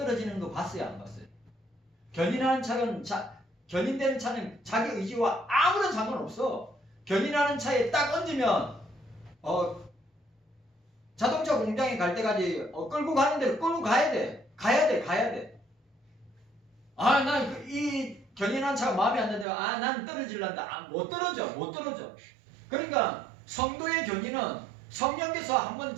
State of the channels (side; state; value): left; drops out; at 19.5 s